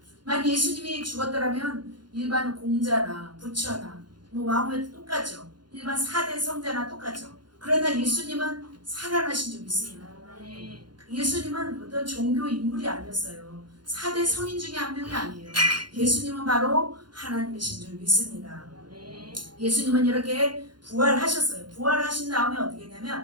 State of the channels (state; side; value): late; left; 0.71 ms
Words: 만약 예수님이 죽었더라면 일반 공자나 부처나 왕후에도 똑같죠. 일반 4대 성자나 똑같죠. 그러나 예수님은 살아나신 줄 믿습니다. 예수님은 어떤 종교 인물이 아니었어요. 4대 성인 중에 한 명이 아니에요. 예수님은 바로 하나님이신 줄 믿습니다. 예수님은 이렇게 부활하셨어요. 부활하신 다음에 어떻게